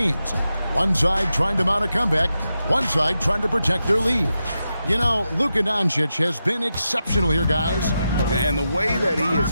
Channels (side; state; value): both; inverted; correlation -0.89